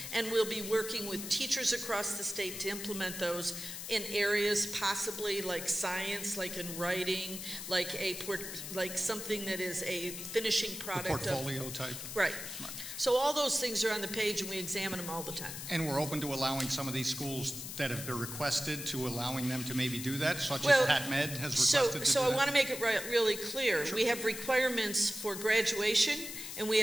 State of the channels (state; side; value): noise; left; hiss, 8 dB below the sound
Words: and we'll be working with teachers across the state to implement those in areas possibly like science, like in writing, like something that is a finishing product. The portfolio type. Right. So all those things are on the page, and we examine them all the time. And we're open to allowing some of these schools that have been requested to allowing them to maybe do that, such as Pat Med has requested to do that. So I want to make it really clear. Sure. We have requirements for graduation, and we